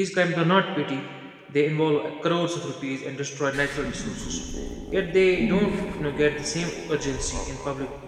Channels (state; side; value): identical; both; correlation 1.00